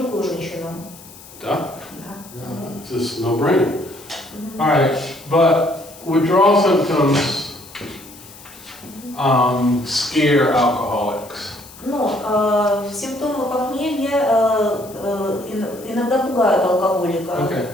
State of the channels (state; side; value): noise; left; hiss, 19 dB below the sound